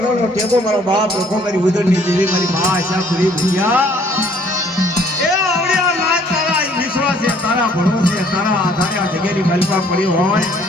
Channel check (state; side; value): normal; both; correlation 0.60